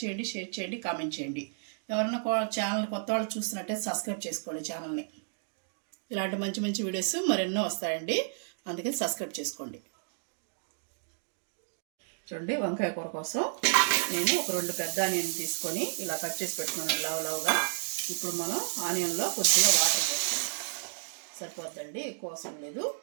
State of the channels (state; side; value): silent; left; digital silence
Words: చేయండి, షేర్ చేయండి, కామెంట్ చేయండి. ఎవరైనా ఛానల్ కొత్త వాళ్ళు చూస్తున్నట్టయితే సబ్స్క్రైబ్ చేసుకోండి ఛానల్ని. ఇలాంటి మంచి మంచి వీడియోస్ మరెన్నో వస్తాయండి, అందుకని సబ్స్క్రైబ్ చేసుకోండి. చూడండి, వంకాయ కూర కోసం నేను ఒక 2 పెద్ద ఆనియన్ తీసుకొని ఇలా కట్ చేసి పెట్టుకున్నాను లావుగా. ఇప్పుడు మనం ఆనియన్లో కొద్దిగా వాటర్ పోస్తాం, సరిపోద్దండి, ఎక్కువ అవసరం లేదు.